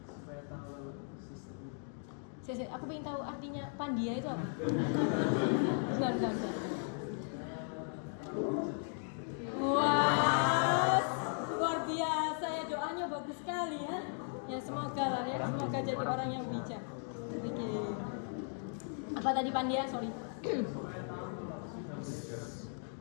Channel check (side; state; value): right; silent; 53 dB below the other